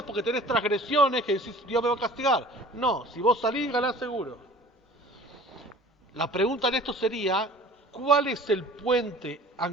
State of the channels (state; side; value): normal; both; correlation 0.46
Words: porque tenés transgresiones que decís Dios me va a castigar. No, si vos salís ganás seguro. La pregunta en esto sería: ¿cuál es el puente